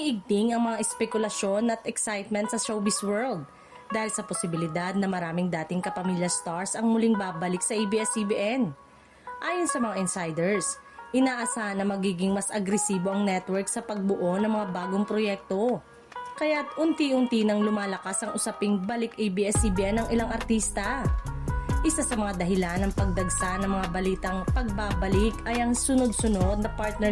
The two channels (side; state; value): both; identical; correlation 1.00